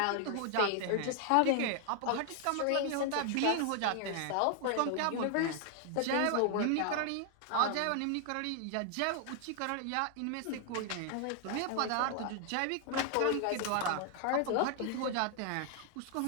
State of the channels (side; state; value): both; different; correlation 0.00